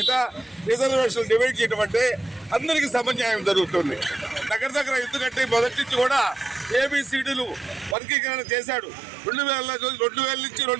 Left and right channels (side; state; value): left; drops out; at 8.0 s